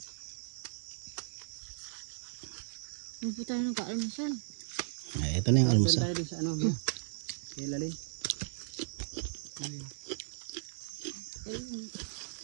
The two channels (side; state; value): left; silent; digital silence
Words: Hindi po tayo nag-almusal. Ito na yung almusal. Tayo din sa ano, kay Lalin.